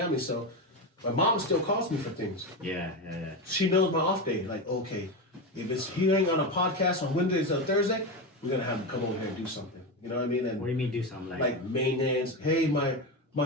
so my mom still calls me for things. Yeah. She knows my off day. Like, okay, if he ain't on a podcast on Wednesdays or Thursday, we're going to have him come over here and do something. You know what I mean? And what do you mean do something like maintenance? Hey, my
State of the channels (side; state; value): both; normal; correlation 0.16